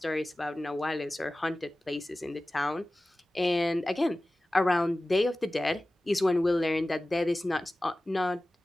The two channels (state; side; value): normal; both; correlation 0.97